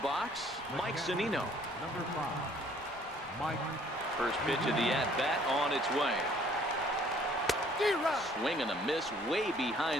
Mike Zunino. Number 5, Mike. First pitch of the at-bat on its way. Swing and a miss way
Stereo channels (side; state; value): right; noise; rumble, 22 dB below the sound